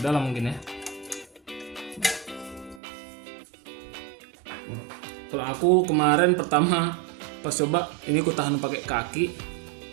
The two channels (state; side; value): drops out; left; at 2.8 s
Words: dalam mungkin ya. Kalau aku kemarin pertama pas coba ini ku tahan pakai kaki,